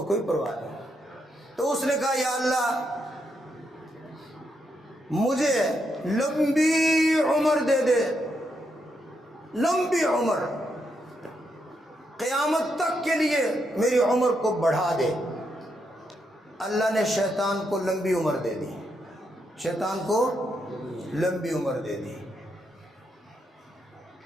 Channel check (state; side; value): normal; both; correlation 0.80